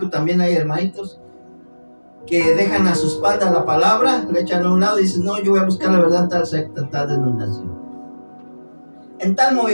también hay hermanitos que dejan a su espalda la palabra, le echan a un lado y dicen, no, yo voy a buscar la verdad en tal secta, en tal denominación, en tal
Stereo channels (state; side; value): inverted; both; correlation -1.00